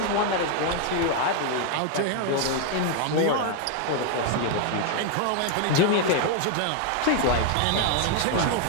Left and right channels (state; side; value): different; both; correlation 0.01